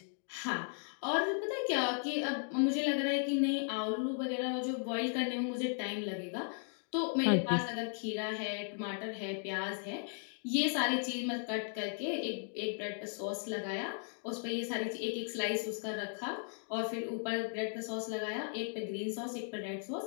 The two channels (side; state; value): right; silent; 54 dB below the other